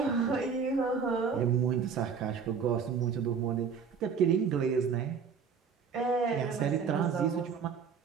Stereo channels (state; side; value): quieter; left; 6.1 dB